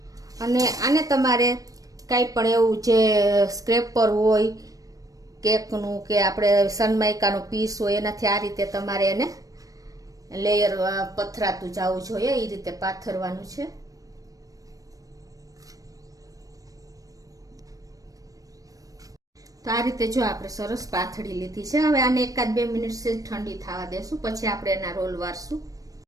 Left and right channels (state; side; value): late; left; 0.17 ms